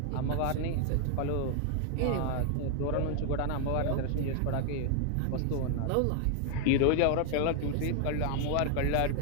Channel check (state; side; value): different; both; correlation 0.00